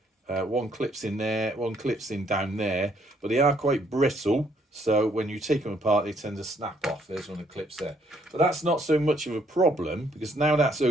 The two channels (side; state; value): both; normal; correlation 0.68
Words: One clips in there, one clips in down there, but they are quite brittle, so when you take them apart they tend to snap off. There's one of the clips there, but that's not so much of a problem, because now that's